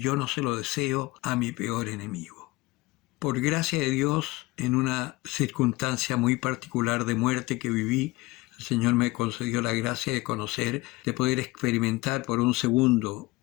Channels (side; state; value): right; quieter; 21.2 dB